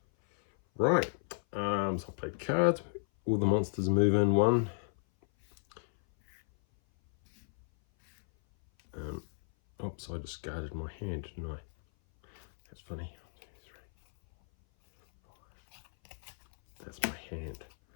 Right, so I'll play cards. All the monsters move in 1. Oops, I discarded my hand, didn't I? That's funny. 1, 2, 3, 4, 5. That's my hand.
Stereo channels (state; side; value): silent; right; 56 dB below the other